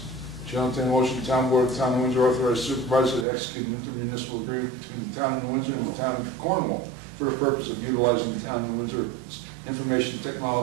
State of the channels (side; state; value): left; drops out; at 3.2 s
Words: Chair will entertain a motion, the Town Board of the Town of Windsor authorize supervisor to execute an intermunicipal agreement between the Town of New Windsor and the Town of Cornwall for the purpose of utilizing the Town of New Windsor information